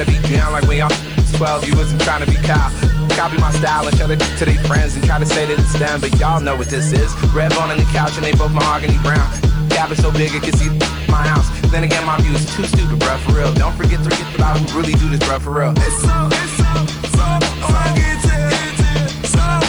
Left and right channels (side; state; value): left; noise; hiss, 29 dB below the sound